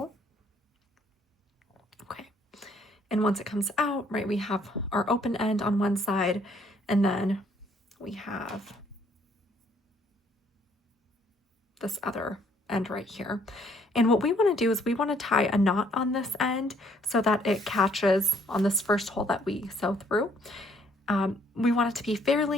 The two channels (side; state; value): both; normal; correlation 0.65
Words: Okay. And once it comes out, right, we have our open end on one side, and then we have this other end right here. And what we want to do is we want to tie a knot on this end so that it catches on this first hole that we sew through. We want it to be